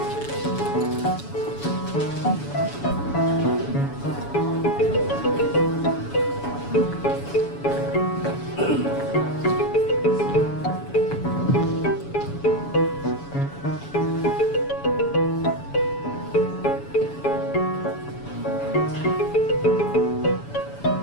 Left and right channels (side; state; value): right; late; 7.1 ms